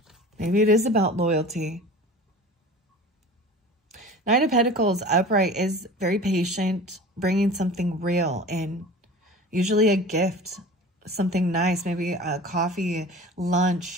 Maybe it is about loyalty. Knight of Pentacles upright is very patient, bringing something real in. Usually a gift, something nice, maybe a coffee,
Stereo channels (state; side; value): normal; both; correlation 0.39